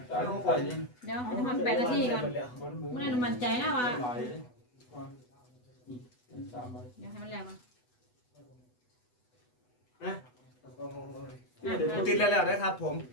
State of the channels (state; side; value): late; right; 8.1 ms